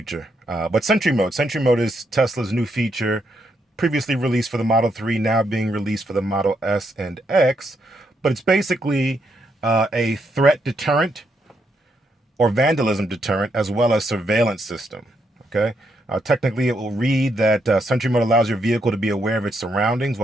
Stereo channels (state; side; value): normal; both; correlation 0.78